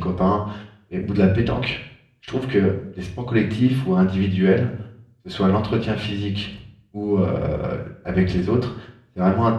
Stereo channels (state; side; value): identical; both; correlation 1.00